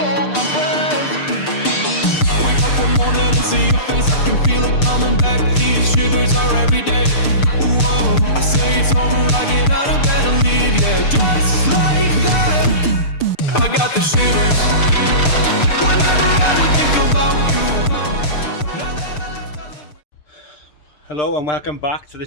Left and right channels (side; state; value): right; late; 6.7 ms